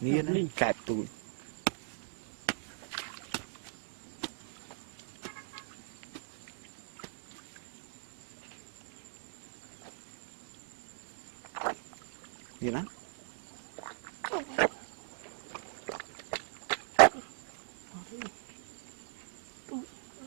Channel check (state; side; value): silent; left; digital silence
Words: nè nó kẹp tụi gì đó